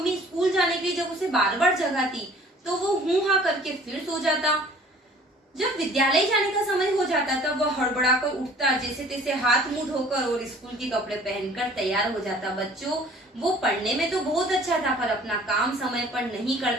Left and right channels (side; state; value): both; normal; correlation 0.51